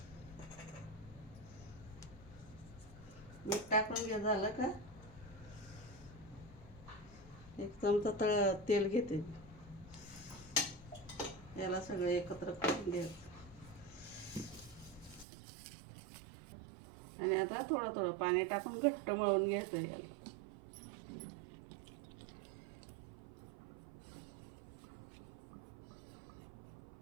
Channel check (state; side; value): drops out; left; at 15.2 s